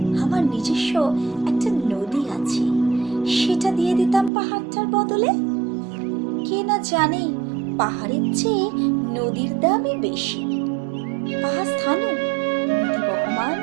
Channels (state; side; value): drops out; left; at 4.3 s